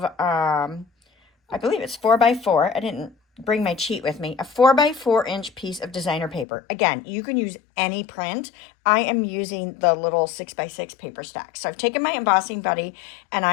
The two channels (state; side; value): drops out; right; at 6.5 s